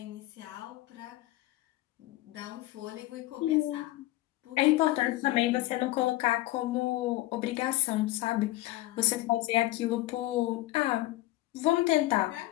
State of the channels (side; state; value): right; quieter; 17.5 dB